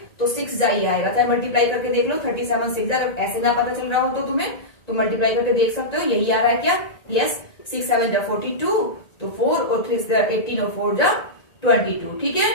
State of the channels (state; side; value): late; right; 1.9 ms